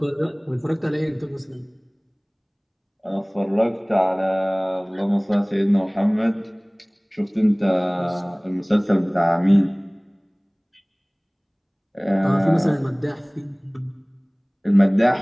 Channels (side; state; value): both; identical; correlation 1.00